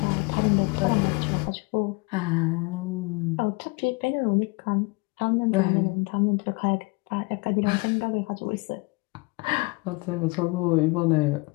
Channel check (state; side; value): quieter; right; 27.4 dB